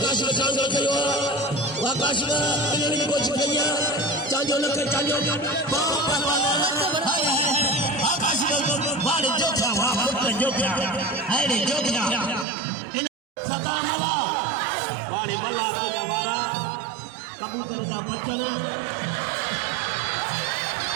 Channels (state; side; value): drops out; left; at 12.5 s